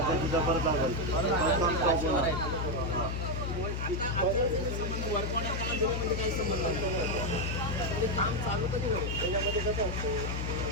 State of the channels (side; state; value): left; noise; hum, 2 dB below the sound